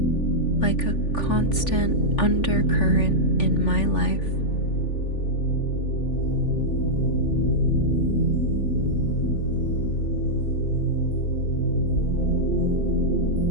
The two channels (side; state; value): right; late; 3.4 ms